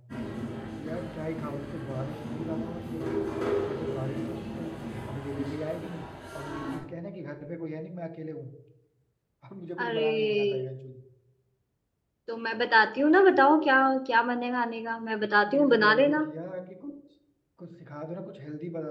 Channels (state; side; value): identical; both; correlation 1.00